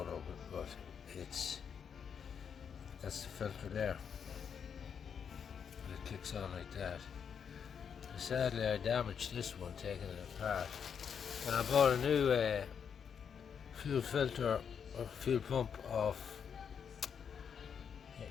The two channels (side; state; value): right; quieter; 7.2 dB